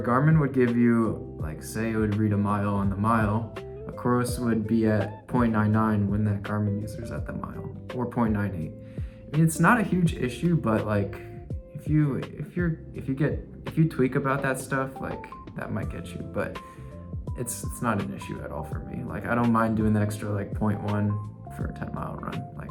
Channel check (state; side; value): identical; both; correlation 1.00